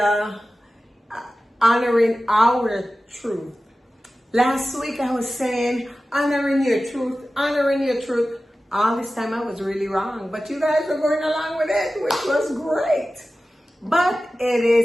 honoring our truth. Last week I was saying honoring your truth. All this time I was really wrong, but you guys were going along with it, which was great. But it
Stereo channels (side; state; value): both; normal; correlation 0.95